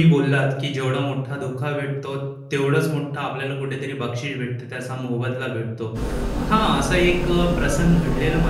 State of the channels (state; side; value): identical; both; correlation 1.00